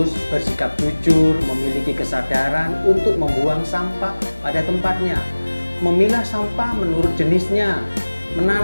bersikap jujur, memiliki kesadaran untuk membuang sampah pada tempatnya, memilah sampah menurut jenisnya,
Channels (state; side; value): inverted; both; correlation -1.00